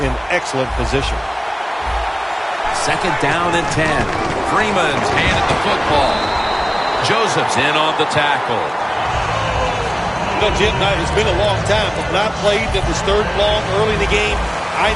in excellent position. Second down and 10. Freeman's handed the football. Joseph's in on the tackle. Jim, it's been a long time. When I played, it was third and long early in the game. I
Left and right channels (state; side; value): identical; both; correlation 1.00